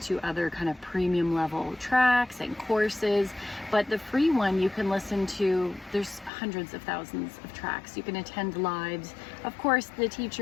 to other kind of premium level tracks and courses. But the free one you can listen to, there's hundreds of thousands of tracks. You can attend lives. Of course, the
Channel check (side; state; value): right; drops out; at 6.3 s